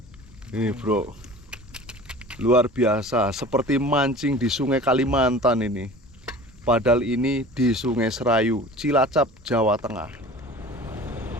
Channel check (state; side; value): normal; both; correlation 0.41